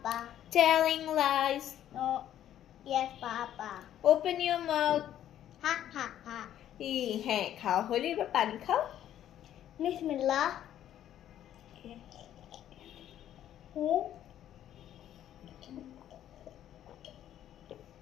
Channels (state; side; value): quieter; right; 11.3 dB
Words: telling lies, No. Yes, Papa. open your mouth. Ha ha ha. হ্যাঁ, খাওয়া হলে এবার পানি খাও। Bismillah.